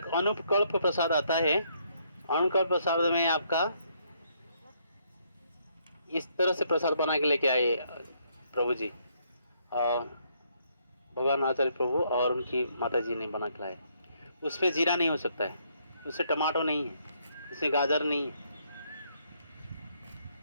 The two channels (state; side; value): inverted; both; correlation -0.71